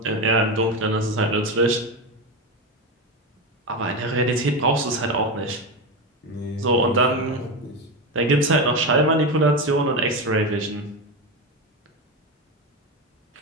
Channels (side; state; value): both; normal; correlation 0.17